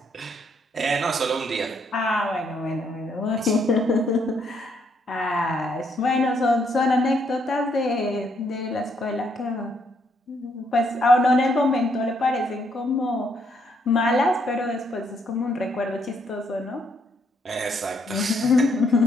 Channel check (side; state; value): both; normal; correlation 0.73